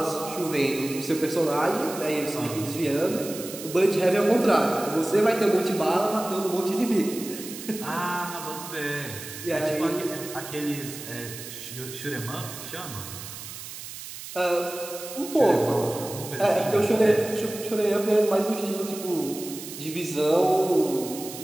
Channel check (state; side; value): noise; right; hiss, 11 dB below the sound